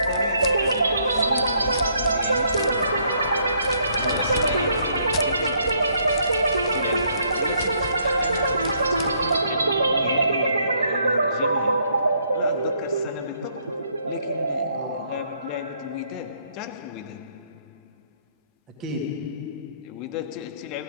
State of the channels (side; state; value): both; inverted; correlation -0.69